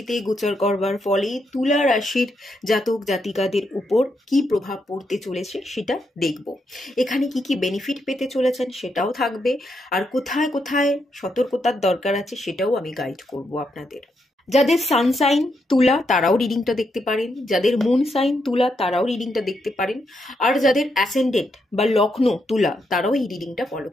গোচর করবার ফলে তুলা রাশির জাতক জাতিকাদের উপর কি প্রভাব পড়তে চলেছে সেটা দেখব। এখানে কি কি বেনিফিট পেতে চলেছেন সেটাও থাকবে, আর কোথায় কোথায় সতর্কতার দরকার আছে সেটাও আমি গাইড করব আপনাদের। যাদের সানসাইন তুলা তারাও রিডিংটা দেখতে পারেন, যাদের মুন সাইন তুলা তারাও রিডিংটা দেখতে পারেন, আর যাদের অ্যাসেন্ডেন্ট বা লগ্ন তুলা তারাও এই রিডিংটা ফলো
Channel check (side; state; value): both; normal; correlation 0.80